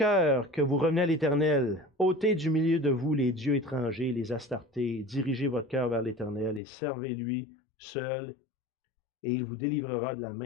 que vous revenez à l'Éternel, ôtez du milieu de vous les dieux étrangers, les astartés, dirigez votre cœur vers l'Éternel et servez-lui seul, et il vous délivrera de la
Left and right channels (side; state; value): right; drops out; at 6.6 s